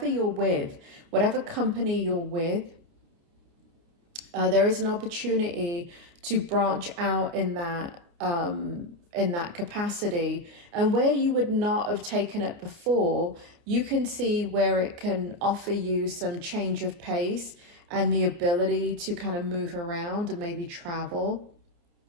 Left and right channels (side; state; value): left; late; 29 ms